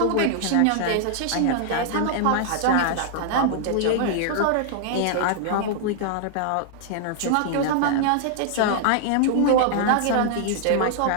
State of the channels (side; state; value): both; different; correlation -0.01